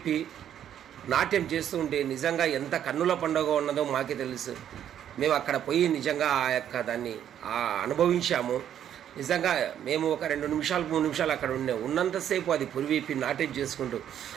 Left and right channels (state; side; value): quieter; left; 10.0 dB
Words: నాట్యం చేస్తూ ఉంటే నిజంగా ఎంత కన్నుల పండుగ ఉన్నదో మాకే తెలుసు. మేము అక్కడ పోయి నిజంగా ఆ యొక్క దాన్ని అనుభవించాము. నిజంగా మేము ఒక 2 నిమిషాలు 3 నిమిషాలు అక్కడ ఉన్నంతసేపు అది పురివిప్పి నాట్యం చేసుకుంటూ